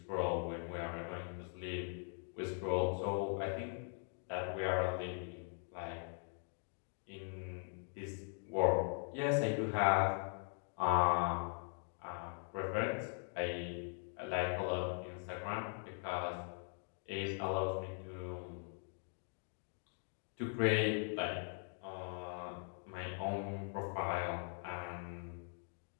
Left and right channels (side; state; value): right; silent; 50 dB below the other